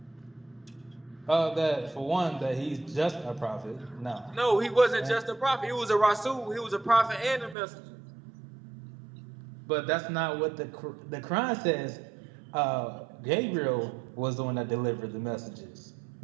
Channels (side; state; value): left; drops out; at 7.6 s